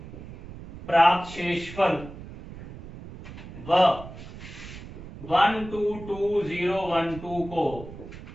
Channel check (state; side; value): noise; right; rumble, 14 dB below the sound